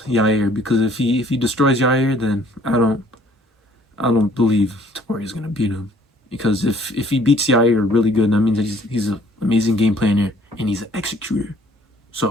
Yair, because if he destroys Yair, then I don't believe Topuria is gonna beat him. Because if he beats Yair really good, that means that he's an amazing game planner and he's an executor.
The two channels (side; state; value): both; normal; correlation 0.58